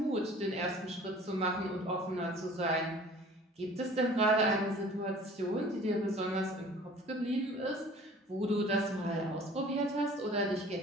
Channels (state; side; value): normal; both; correlation 0.48